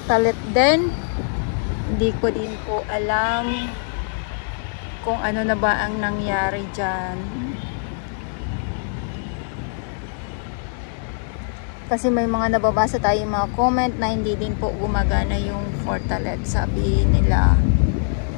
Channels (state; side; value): silent; right; digital silence